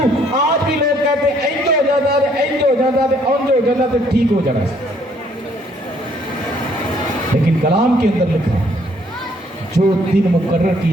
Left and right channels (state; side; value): normal; both; correlation 0.64